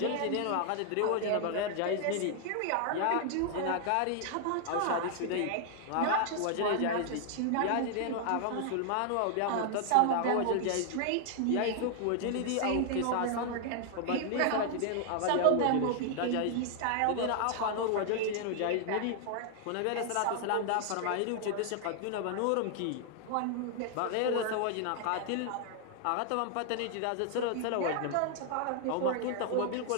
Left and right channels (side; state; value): both; different; correlation 0.00